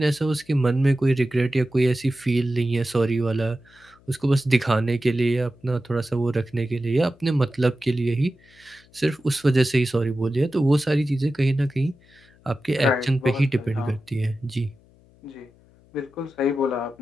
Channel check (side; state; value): left; noise; hum, 29 dB below the sound